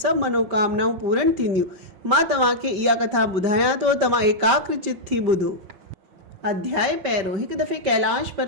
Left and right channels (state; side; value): late; left; 5.2 ms